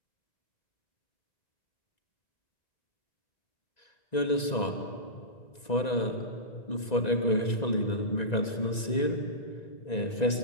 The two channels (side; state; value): right; late; 1.9 ms